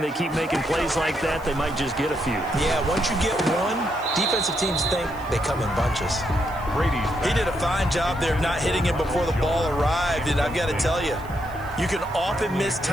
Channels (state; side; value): noise; left; hiss, 24 dB below the sound